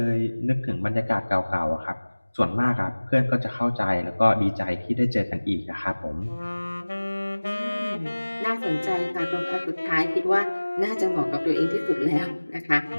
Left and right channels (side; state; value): both; inverted; correlation -1.00